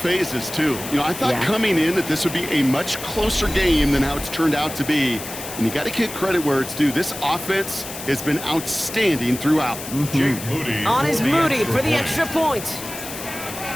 too. You know, I thought coming in that this would be a much closer game than how it's turned out to be. And you got to give credit where it's due. This offense has been outstanding throughout. Jake Moody On is Moody for the extra point.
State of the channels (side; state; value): left; noise; hiss, 10 dB below the sound